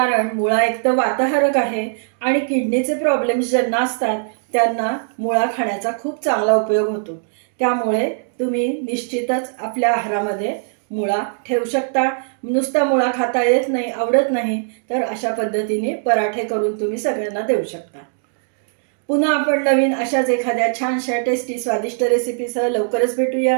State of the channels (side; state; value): left; silent; digital silence